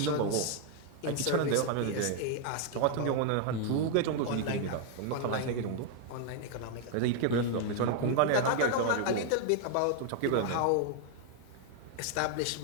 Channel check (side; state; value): both; different; correlation 0.00